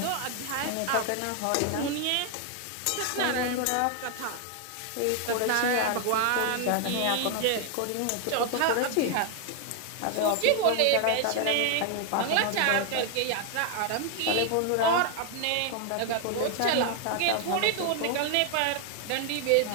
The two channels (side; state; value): both; different; correlation 0.00